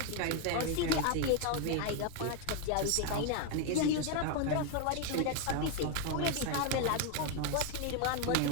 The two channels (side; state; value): both; different; correlation 0.01